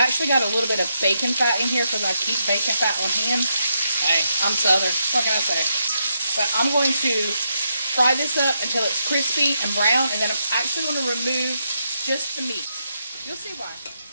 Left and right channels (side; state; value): both; inverted; correlation -0.81